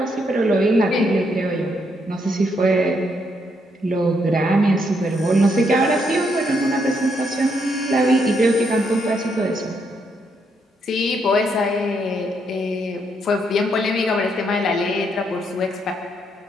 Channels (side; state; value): both; normal; correlation 0.76